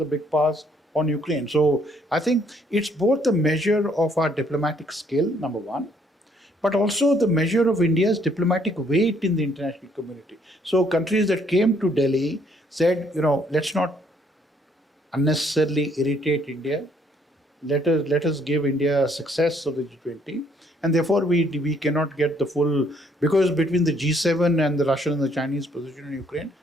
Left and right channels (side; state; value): both; normal; correlation 0.67